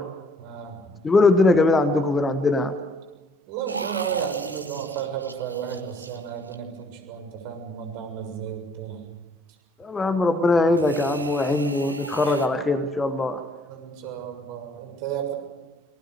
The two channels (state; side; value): normal; both; correlation 0.63